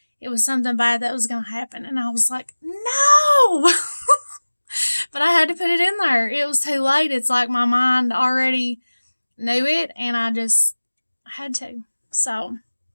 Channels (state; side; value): inverted; both; correlation -1.00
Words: It was something bad that was going to happen. And I was like, no! But I had to put it in there. It was too late. It's like my mind already knew it, and I just had to. So